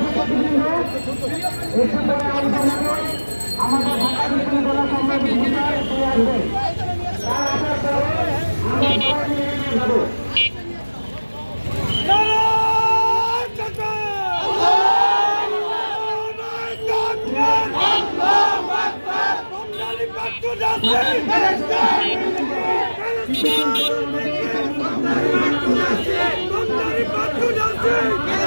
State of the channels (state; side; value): inverted; both; correlation -1.00